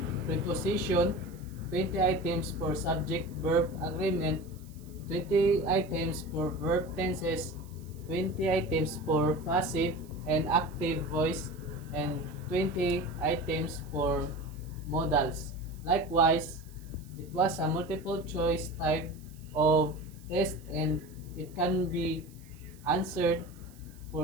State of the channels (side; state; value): right; noise; hiss, 26 dB below the sound